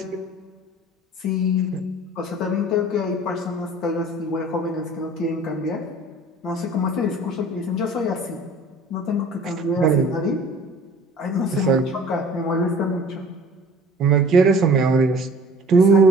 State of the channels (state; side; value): normal; both; correlation 0.47